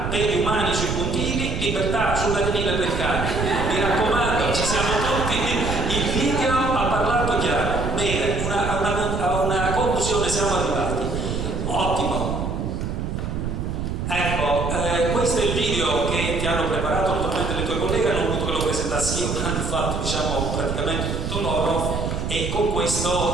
per gli umani sui puntini, libertà sull'arenile per i cani. Mi raccomando, ci siamo tutti, il video ha parlato chiaro. Bene, a una conclusione siamo arrivati. Ottimo. Ecco, questo è il video che ti hanno preparato naturalmente le tue colleghe, hanno voluto che lo presentassi io, ma hanno fatto diciamo praticamente tutto loro, e con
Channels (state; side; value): noise; right; rumble, 2 dB below the sound